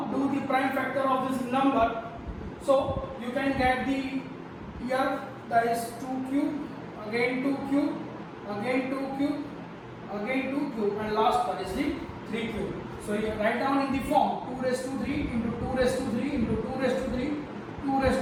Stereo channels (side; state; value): both; identical; correlation 1.00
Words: do the prime factor of this number. So you can get the here, that is 2 cube, again 2 cube, again 2 cube, again 2 cube, and last that is the 3 cube. So you write down in the form 2 raised to 3 into 2 raised to 3 into 2 raised to 3, 2 raised